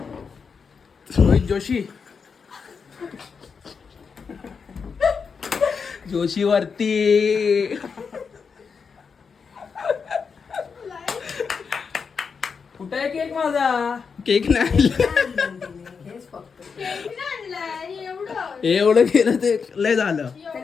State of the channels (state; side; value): quieter; right; 5.7 dB